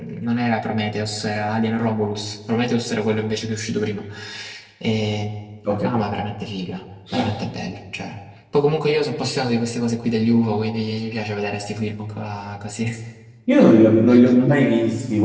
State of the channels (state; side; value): identical; both; correlation 1.00